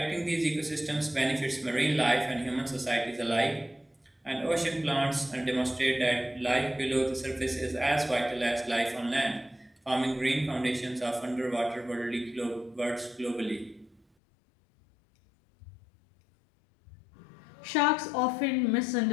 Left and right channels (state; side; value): drops out; right; at 14.0 s